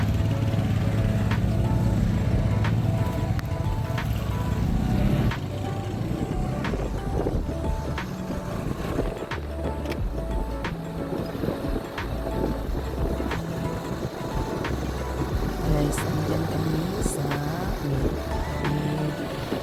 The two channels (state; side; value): identical; both; correlation 1.00